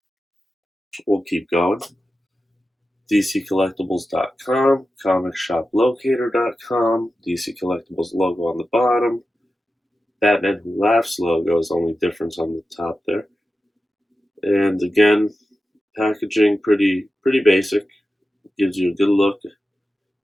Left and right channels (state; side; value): normal; both; correlation 0.92